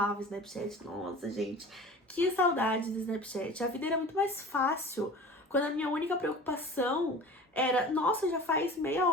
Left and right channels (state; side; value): normal; both; correlation 0.39